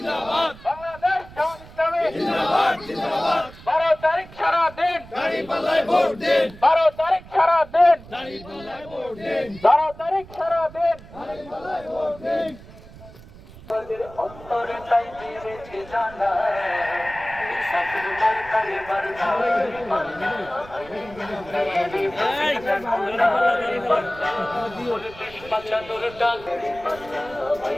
বাংলাদেশ জামাত ইসলামী জিন্দাবাদ জিন্দাবাদ। 12 তারিখ সারা দিন দাঁড়িপাল্লায় ভোট দিন। 12 তারিখ সারা দিন দাঁড়িপাল্লায় ভোট দিন। 12 তারিখ সারা দিন দাঁড়িপাল্লায় ভোট দিন। আমাদের অন্তরে তাই বেড়েছে জানা সাকির মার্কারে বাঁচানোর ডাকের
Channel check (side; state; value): right; noise; rumble, 19 dB below the sound